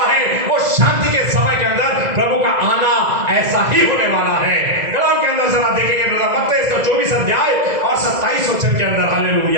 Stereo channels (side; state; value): left; late; 2.0 ms